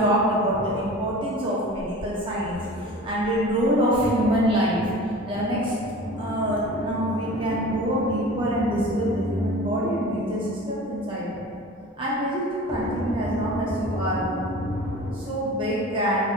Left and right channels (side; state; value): both; normal; correlation 0.38